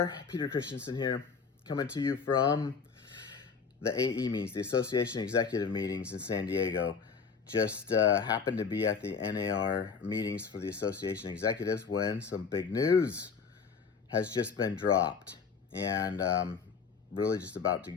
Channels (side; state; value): right; quieter; 5.6 dB